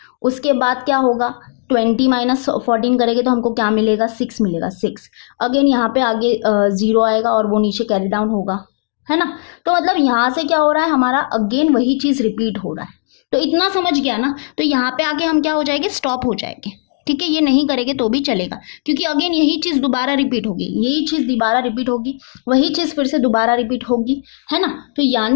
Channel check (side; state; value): right; silent; digital silence